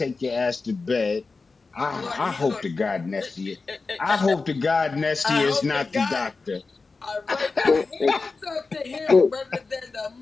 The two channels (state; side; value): quieter; right; 4.1 dB